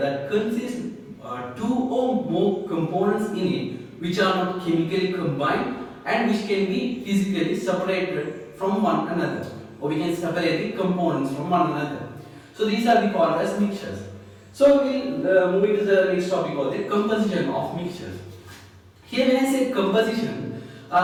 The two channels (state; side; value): identical; both; correlation 1.00